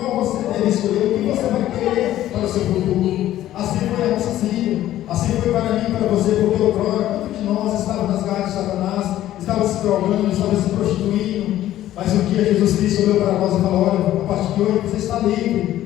você deve escolher, o que você vai querer para o seu futuro. Assim foi a nossa filha, assim foi para mim e para você, porque outrora, quantos de nós estávamos nas garras de Satanás, estava se drogando, estava se prostituindo, mas um dia Jesus Cristo olhou para nós e falou: olha, a partir de hoje você está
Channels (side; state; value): right; quieter; 13.4 dB